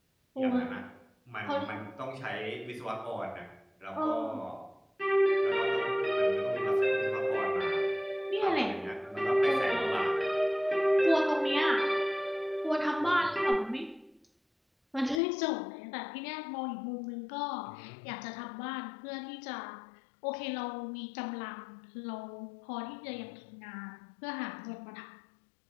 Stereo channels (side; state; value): right; drops out; at 15.2 s